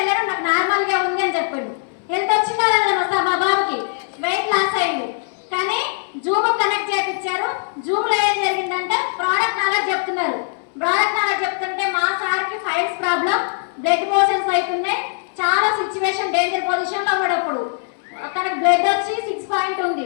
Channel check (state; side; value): silent; right; 63 dB below the other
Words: నాకు నార్మల్ గా ఉంది అని చెప్పాడు. హెల్త్ వచ్చిందా మా బాబుకి వెయిట్ లాస్ అయ్యింది. కానీ జూమ్ కనెక్ట్ చేయించారు. జూమ్ లో ఏం జరిగిందంటే ప్రోడక్ట్ నాలెడ్జ్ చెప్తున్నారు. ప్రోడక్ట్ నాలెడ్జ్ చెప్తుంటే మా సార్కి ఫైల్స్ ప్రాబ్లం, బ్లడ్ మోషన్స్ అవుతున్నాయి, చాలా సిచ్యువేషన్ డేంజర్ పొజిషన్ లో ఉన్నప్పుడు తనకు బ్లడ్ వచ్చి 6 పాయింట్ ఉంది.